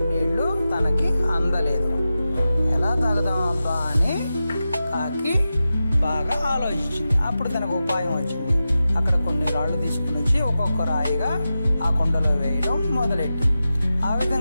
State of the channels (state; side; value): inverted; both; correlation -0.92